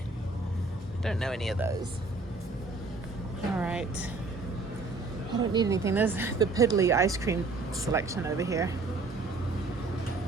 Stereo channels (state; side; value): quieter; left; 3.6 dB